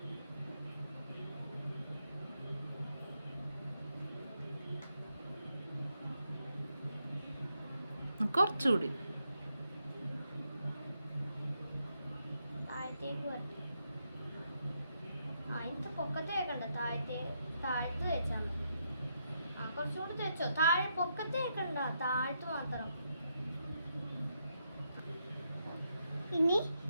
കുറച്ചുകൂടി താഴത്തേക്ക് വരട്ടെ. അതിന്റെ പൊക്കത്ത് വെക്കണ്ട, താഴത്ത് വെച്ചാൽ മതി. കുറച്ചുകൂടി വെച്ചോ. താഴെ പൊക്കത്ത് വെക്കണ്ട, താഴത്ത് മാത്രം. ഇനി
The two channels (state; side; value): inverted; both; correlation -0.80